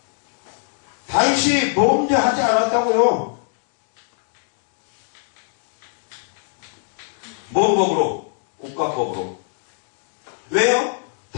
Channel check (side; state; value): right; silent; digital silence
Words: 다윗이 범죄하지 않았다고요. 뭔 법으로? 국가법으로. 왜요?